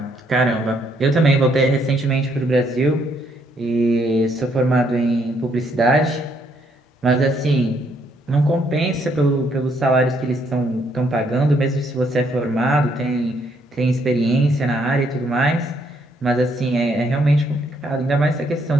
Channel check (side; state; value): both; normal; correlation 0.71